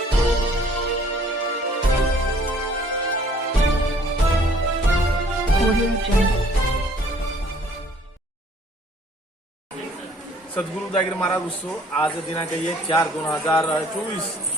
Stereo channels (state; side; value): normal; both; correlation 0.58